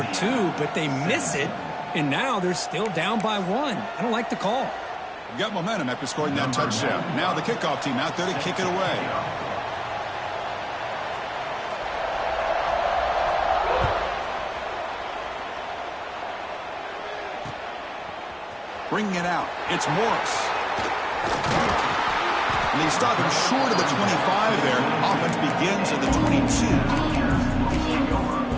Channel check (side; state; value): both; identical; correlation 1.00